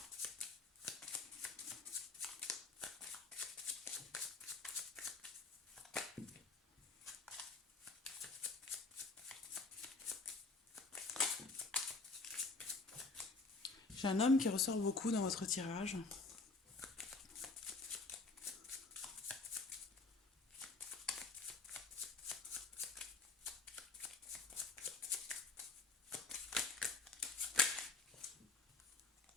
j'ai un homme qui ressort beaucoup dans votre tirage.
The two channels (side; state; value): right; quieter; 3.8 dB